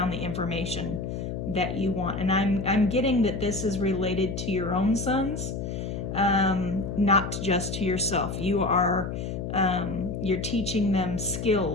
the information that you want. And I'm getting that this is related to your own sons, not just to yourself. You are you're teaching them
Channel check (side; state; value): left; noise; hum, 5 dB below the sound